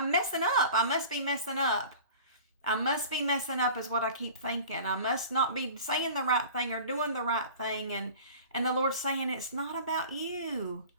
messing up. I must be messing up. I must be messing up is what I keep thinking. I must not be saying the right thing or doing the right thing, and the Lord's saying, it's not about you.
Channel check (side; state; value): both; inverted; correlation -0.41